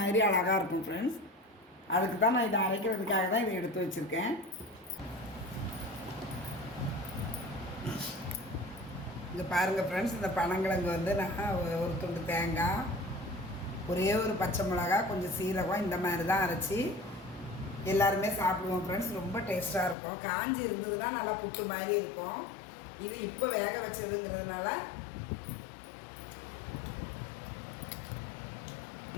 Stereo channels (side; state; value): right; drops out; at 20.0 s